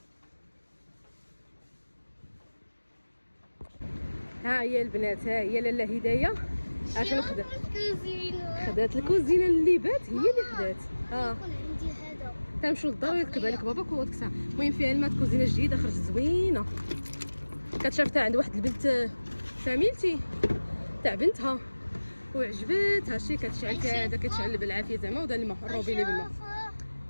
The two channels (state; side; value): inverted; both; correlation -1.00